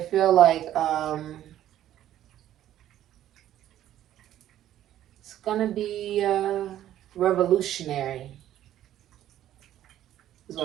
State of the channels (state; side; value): quieter; left; 12.2 dB